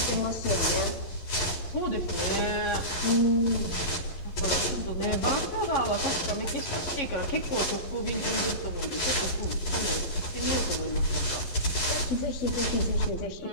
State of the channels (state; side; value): late; right; 11 ms